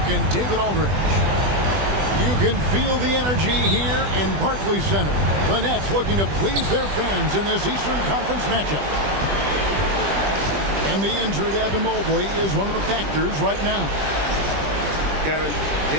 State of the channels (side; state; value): left; late; 20 ms